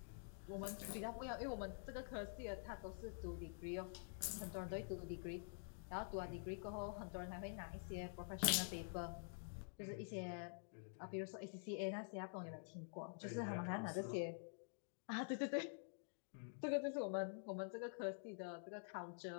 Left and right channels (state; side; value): silent; right; digital silence